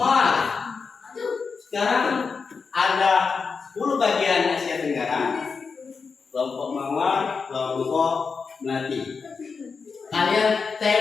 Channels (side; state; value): right; quieter; 5.1 dB